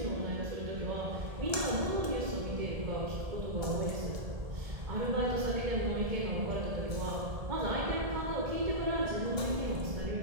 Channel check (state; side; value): late; left; 1.7 ms